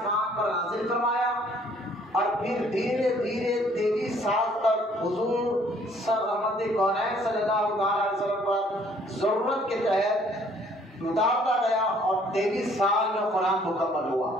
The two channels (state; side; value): normal; both; correlation 0.60